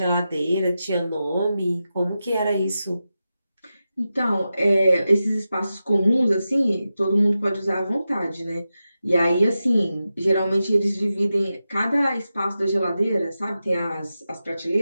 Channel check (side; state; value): both; inverted; correlation -0.91